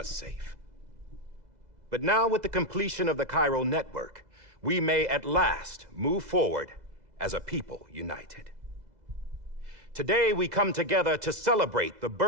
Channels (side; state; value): left; late; 2.0 ms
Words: safe. But now, with the completion of the Chiral network, we may at last move forward as a people united. Today, we come together to celebrate the